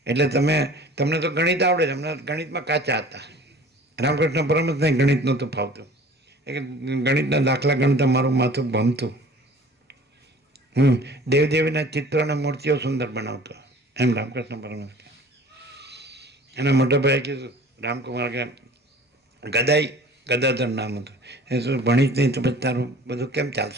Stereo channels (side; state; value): both; normal; correlation 0.47